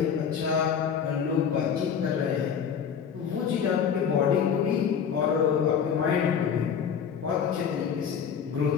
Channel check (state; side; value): quieter; right; 7.4 dB